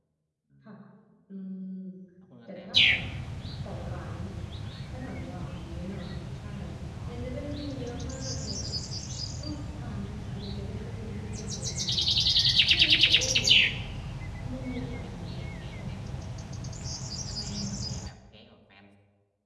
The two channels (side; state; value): both; identical; correlation 1.00